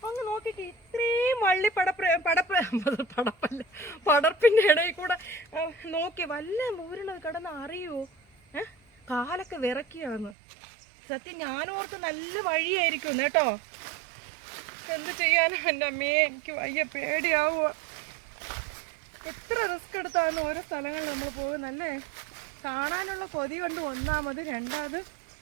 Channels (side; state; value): left; drops out; at 10.4 s